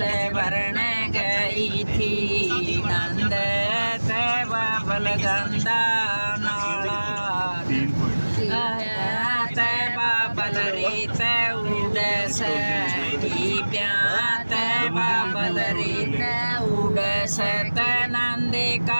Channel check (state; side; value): inverted; both; correlation -1.00